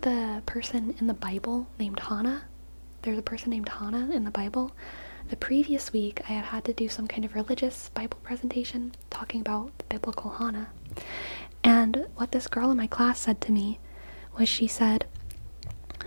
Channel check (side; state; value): both; inverted; correlation -1.00